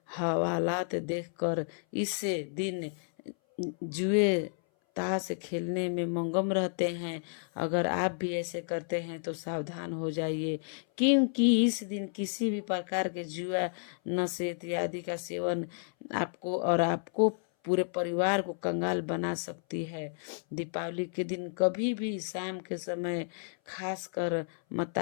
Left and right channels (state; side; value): silent; right; 57 dB below the other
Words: हवालात देखकर इस दिन जुए ताश खेलने में मगन रहते हैं। अगर आप भी ऐसे करते हैं तो सावधान हो जाइए, क्योंकि इस दिन किसी भी प्रकार के जुआ नशे इत्यादि का सेवन आपको पूरे परिवार को कंगाल बना सकती है। दीपावली के दिन कभी भी शाम के समय खासकर